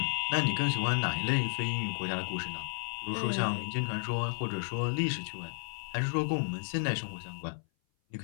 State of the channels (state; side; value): silent; right; 56 dB below the other